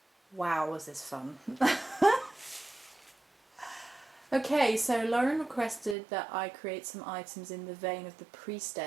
Wow, was this fun. Okay, so Lauren requested that I create some items in the vein of the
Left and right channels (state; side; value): drops out; left; at 6.0 s